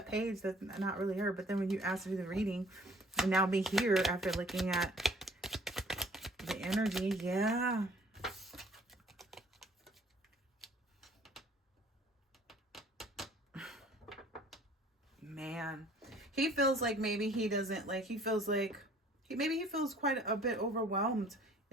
page. That's not really her. But then when you asked to do the reading, and now be here after looking at the energy, yeah. Man, he feels like maybe he doesn't like, he feels like maybe he feels quite a bit overwhelmed.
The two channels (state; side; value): normal; both; correlation 0.55